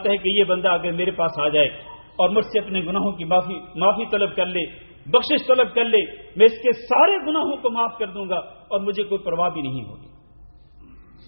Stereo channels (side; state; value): both; inverted; correlation -1.00